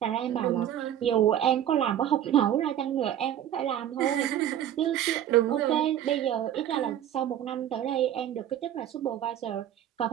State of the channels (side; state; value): left; quieter; 11.0 dB